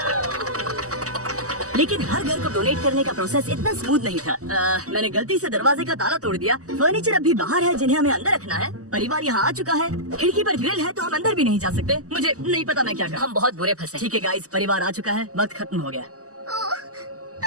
लेकिन हर घर को डोनेट करने का प्रोसेस इतना स्मूथ नहीं था। मैंने गलती से दरवाजे का ताला तोड़ दिया। फर्नीचर अब भी बाहर है, जिन्हें हमें अंदर रखना है। परिवार यहाँ आ चुका है। खिड़की पर ग्रिल है, तो हम अंदर भी नहीं जा सकते। मुझे नहीं पता मैं क्या करूं। हम बहुत बुरे फंसे। ठीक है गाइस, परिवार आ चुका है, वक्त खत्म हो गया।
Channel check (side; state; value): left; late; 0.66 ms